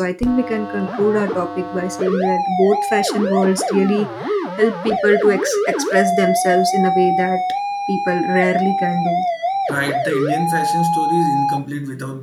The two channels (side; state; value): both; identical; correlation 1.00